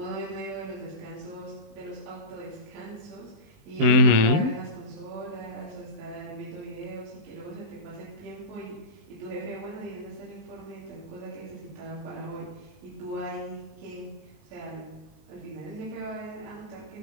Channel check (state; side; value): late; left; 19 ms